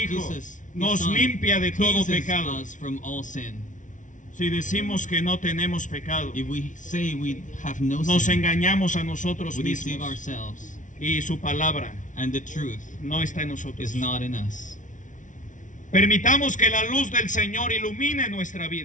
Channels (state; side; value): late; right; 0.37 ms